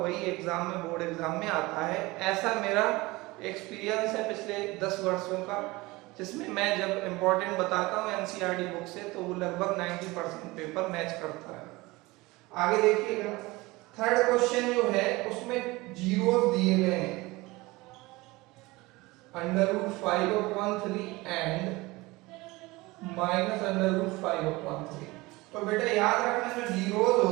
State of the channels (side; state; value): left; quieter; 21.8 dB